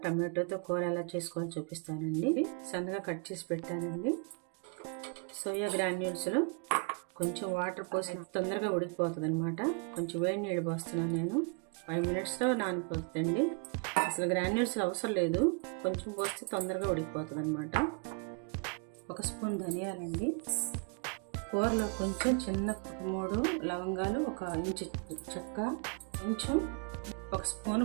టమాటోతో కూర ఎలా చేసుకోవాలో చూపిస్తానండి. సన్నగా కట్ చేసి పెట్టానండి. సోయా గ్రాన్యూల్స్లో కొంచెం వాటర్ పోసి తొందరగా ఉడికిపోతుంది అనమాట. కొంచెం వేడి నీళ్ళు పోస్తున్నాను నేను. 5 minutesలో నానిపోతుందండి. అసలు గ్రాన్యూల్స్లో అవసరం లేదు, కొంచెం పోస్తే తొందరగా ఉడికిపోతుంది అనమాట. 1 స్పూన్ ధనియాలండి. కూరలో కొంచెం చిన్న 3 లవంగాలు, 1 ఇంచు చెక్క, కొంచెం 1 స్పూన్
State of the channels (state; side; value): quieter; left; 37.2 dB